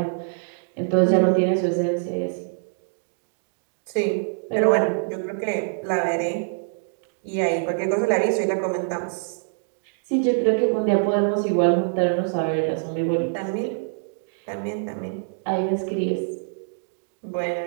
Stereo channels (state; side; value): silent; left; digital silence